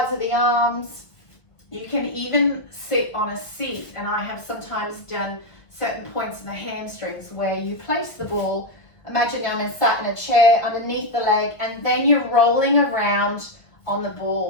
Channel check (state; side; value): late; right; 1.5 ms